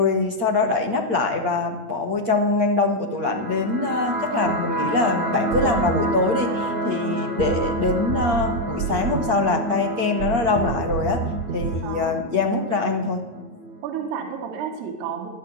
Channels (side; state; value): left; late; 8.5 ms